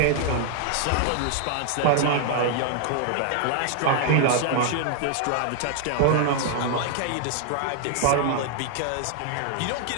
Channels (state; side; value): different; both; correlation 0.00